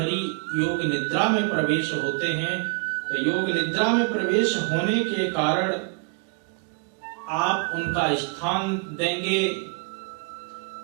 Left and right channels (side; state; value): left; quieter; 34.4 dB